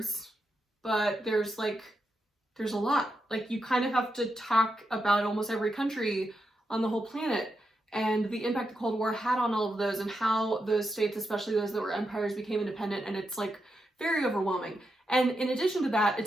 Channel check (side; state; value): both; normal; correlation 0.85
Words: but there's a lot. Like, you kind of have to talk about almost every country on the whole planet and the impact the Cold War had on all of those and how those states, especially those that were empires, became independent, and it's like very overwhelming. And in addition to that,